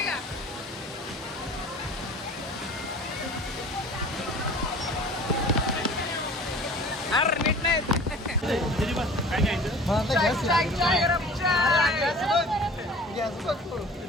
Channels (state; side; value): normal; both; correlation 0.44